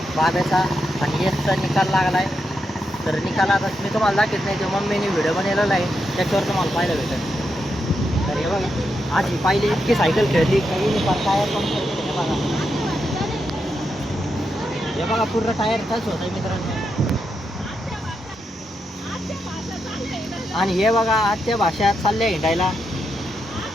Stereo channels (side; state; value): both; normal; correlation 0.84